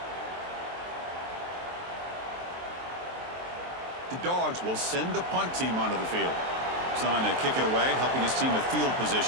The Dogs will send the punt team onto the field. Trying to kick it away, helping his team with field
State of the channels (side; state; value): left; late; 23 ms